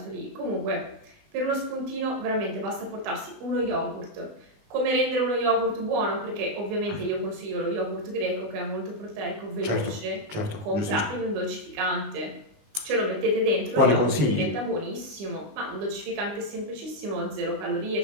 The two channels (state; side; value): late; left; 20 ms